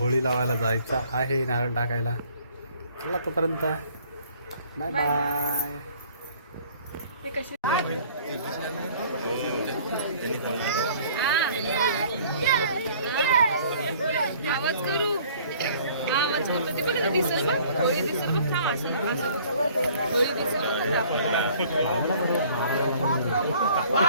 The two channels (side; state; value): both; inverted; correlation -0.54